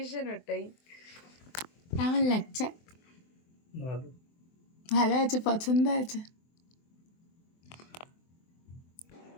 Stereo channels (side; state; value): right; late; 24 ms